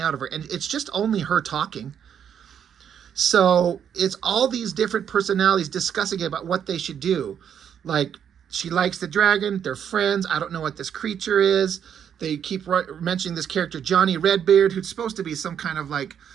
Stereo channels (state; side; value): quieter; left; 8.5 dB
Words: of her, and it's just only her talking. So it's all these different personalities discussing about what they should do. Like, she likes the dragon, they're friends, I don't know what this creature is. They keep mentioning this character, Johnny Redbeard, who's supposed to be some kind of like